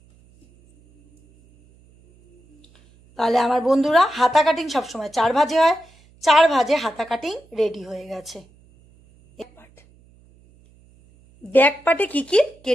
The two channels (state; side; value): noise; right; hum, 30 dB below the sound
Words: তাহলে আমার বন্ধুরা হাতা কাটিং সবসময় 4 ভাঁজে হয়, 4 ভাঁজে হাতা কাটিং রেডি হয়ে গেছে। ব্যাক পার্টে কি কি